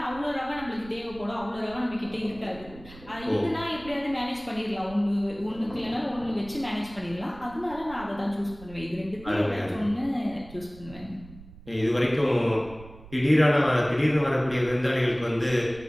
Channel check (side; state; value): right; noise; rumble, 18 dB below the sound